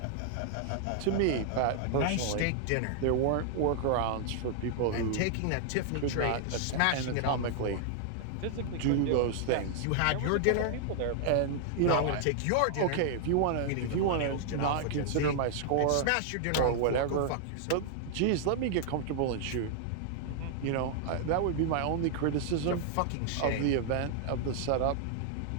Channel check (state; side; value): different; both; correlation -0.01